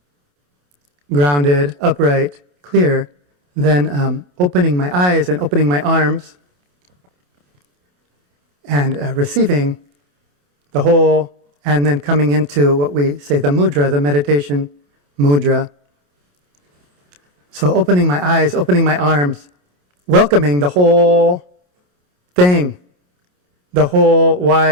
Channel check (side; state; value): left; late; 28 ms